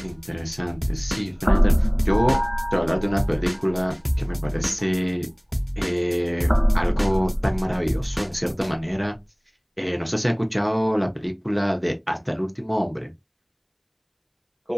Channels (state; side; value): identical; both; correlation 1.00